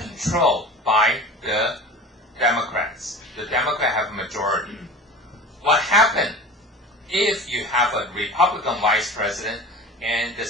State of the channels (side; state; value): both; normal; correlation 0.36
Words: by the Democrats. The Democrats have a majority. What happened if you have a Republican vice president and the